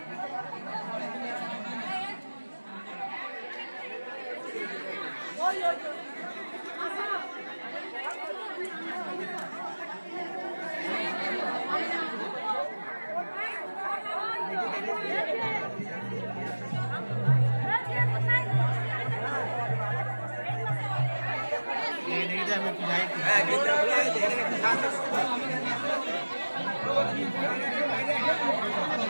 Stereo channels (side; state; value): both; inverted; correlation -1.00